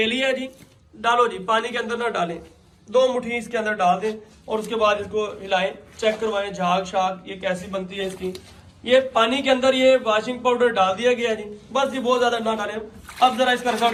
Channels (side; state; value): both; identical; correlation 1.00